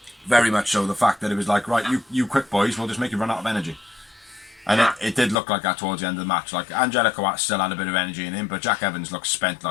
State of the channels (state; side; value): drops out; right; at 5.4 s